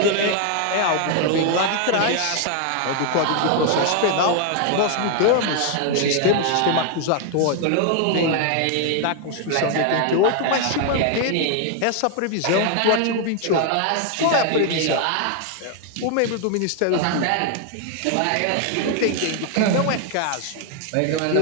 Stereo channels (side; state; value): both; different; correlation 0.00